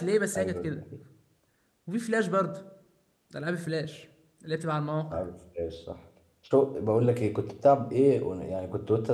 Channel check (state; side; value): identical; both; correlation 1.00